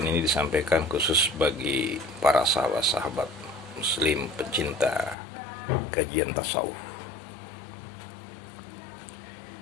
ini disampaikan khusus bagi para sahabat-sahabat muslim pencinta kajian tasawuf.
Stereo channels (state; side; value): drops out; right; at 5.2 s